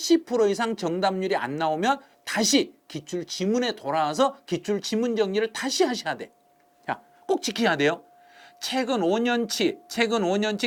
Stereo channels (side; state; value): both; identical; correlation 1.00